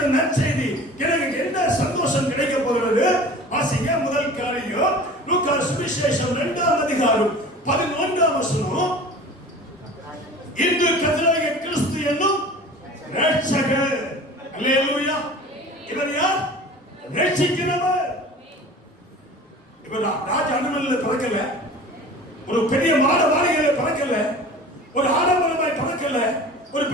நற்செய்தி, எனக்கு என்ன சந்தோஷம் கிடைக்க போகிறது? வாசிங்க. முதல் காரியம் லூக்கா சுவிசேஷம் 2வது அதிகாரம் 11வது வசனம். இன்று கர்த்தராகிய கிறிஸ்து என்னும் இரட்சகர். அல்லேலூயா. இவர் யார்? இரட்சிக்கிறவர். இவர் ராஜ அனுமதியில பிறக்கல, ஒரு பெரிய மாட மாளிகையில பிறக்கல, ஒரு ஆடம்பரமாய் பிறக்கல, ஒரு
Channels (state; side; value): normal; both; correlation 0.40